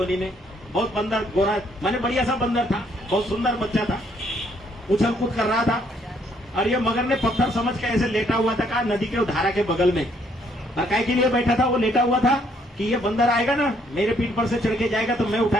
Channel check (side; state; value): both; normal; correlation 0.68